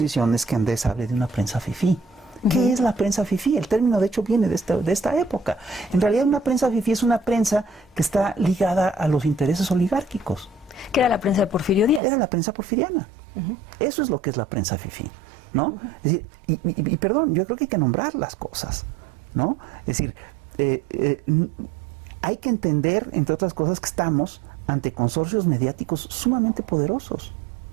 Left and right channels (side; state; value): left; drops out; at 12.0 s